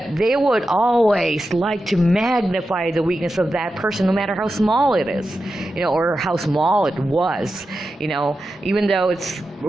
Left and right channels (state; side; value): normal; both; correlation 0.91